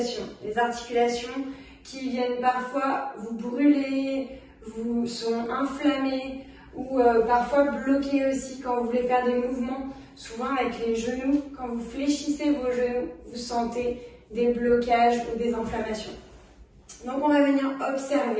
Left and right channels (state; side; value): identical; both; correlation 1.00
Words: Les articulations qui viennent parfois vous brûler, vous sont inflammées ou parfois bloquées aussi quand vous voulez faire des mouvements. Souvent avec les genoux, quand vous fléchissez vos genoux, vous sentez des blocages ou des inflammations. Donc on va venir